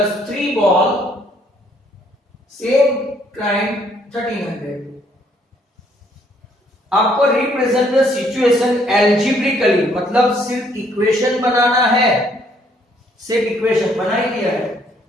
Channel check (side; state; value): both; normal; correlation 0.66